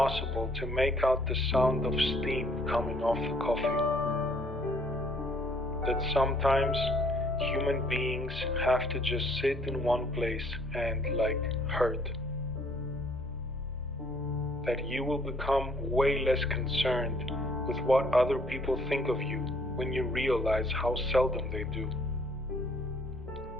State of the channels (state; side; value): normal; both; correlation 0.62